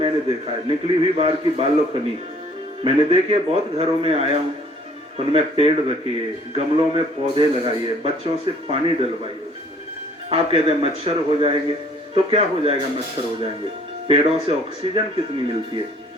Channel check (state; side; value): normal; both; correlation 0.57